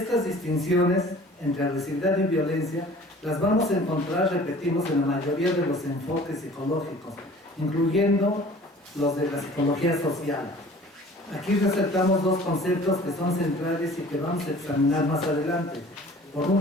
distinciones entre agresividad y violencia las vamos a encontrar, repetimos, en la mayoría de los enfoques psicológicos, incluyendo los de la psicología social. Aquí resaltamos dos conceptos que son centrales y que vamos a examinar más adelante. Por un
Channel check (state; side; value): normal; both; correlation 0.47